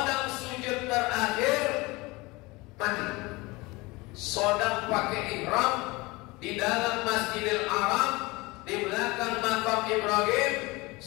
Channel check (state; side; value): quieter; right; 23.4 dB